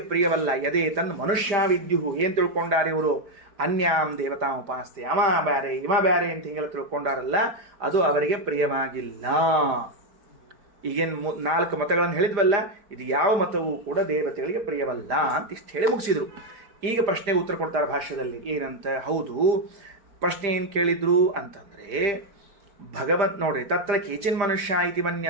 ಪ್ರಿಯವಲ್ಲ. ಯದೇ ತನ್ ಮನುಷ್ಯ ವಿದ್ಯುಹು, ಏನ್ ತಿಳ್ಕೊಂಡಾರೆ ಇವರು? ಅನ್ಯಾಂ ದೇವತಾ ಉಪಾಸ್ತೆ, ಅವ ಬ್ಯಾರೆ ಇವ ಬ್ಯಾರೆ ಅಂತ ಹಿಂಗೆಲ್ಲ ತಿಳ್ಕೊಂಡಾರಲ್ಲ, ಅದು ಅವರಿಗೆ ಪ್ರಿಯವಾಗಿಲ್ಲ. ಈಗೇನು 4 ಮತಗಳನ್ನು ಹೇಳಿದ್ವಲ್ಲ, ಇದು ಯಾವ ಮತವೂ ಕೂಡ ದೇವತೆಗಳಿಗೆ ಪ್ರಿಯವಲ್ಲ ಅಂತ ಇಷ್ಟು ಹೇಳಿ ಮುಗಿಸಿದ್ರು. ಈಗ ಪ್ರಶ್ನೆಗೆ ಉತ್ತರ ಕೊಡ್ತಾರೆ ಭಾಷ್ಯದಲ್ಲಿ. ಏನಂತ? ಹೌದು, ಪ್ರಶ್ನೆ ಏನು ಕೇಳಿದ್ರು ಅಂತಂದ್ರೆ ಭಗವತ್ ನೋಡ್ರಿ, ತತ್ರ ಕೇಚಿನ್ ಮನುಷ್ಯ ಇತಿ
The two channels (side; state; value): left; late; 5.0 ms